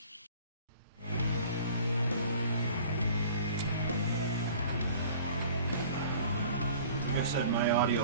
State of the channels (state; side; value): inverted; both; correlation -0.48